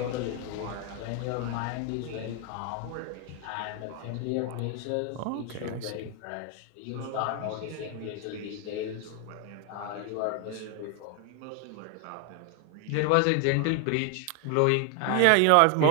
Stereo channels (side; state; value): both; different; correlation 0.01